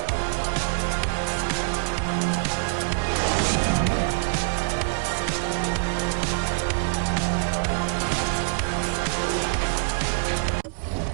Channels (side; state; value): left; silent; 62 dB below the other